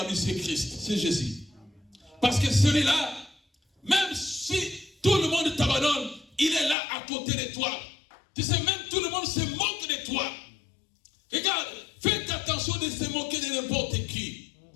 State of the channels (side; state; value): right; drops out; at 6.8 s